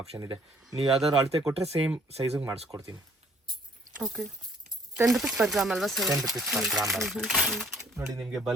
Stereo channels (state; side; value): normal; both; correlation 0.61